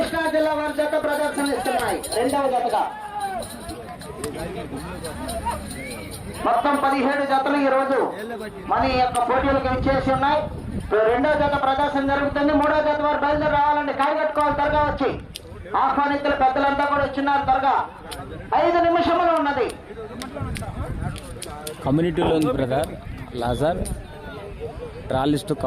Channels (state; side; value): identical; both; correlation 1.00